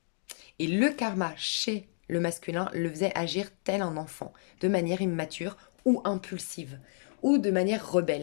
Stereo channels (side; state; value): right; silent; digital silence